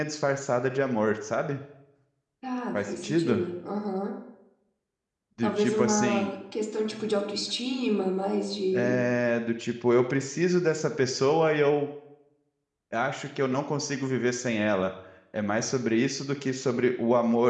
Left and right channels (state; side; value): identical; both; correlation 1.00